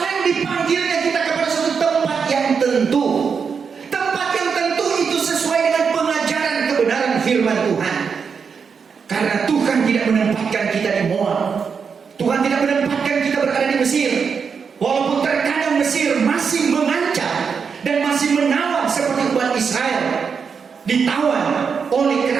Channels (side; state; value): left; quieter; 6.0 dB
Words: dipanggilnya kita kepada suatu tempat yang tentu. Tempat yang tentu itu sesuai dengan pengajaran kebenaran firman Tuhan. Karena Tuhan tidak menempatkan kita di Moab, Tuhan tidak menempatkan kita berada di Mesir. Walaupun terkadang Mesir masih mengancam dan masih menawan seperti umat Israel, ditawan oleh